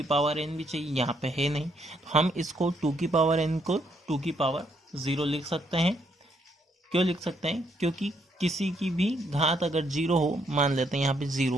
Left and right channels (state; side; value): normal; both; correlation 0.73